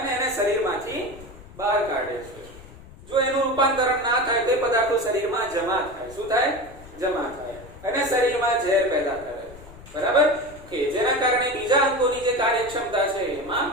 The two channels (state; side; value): noise; left; rumble, 19 dB below the sound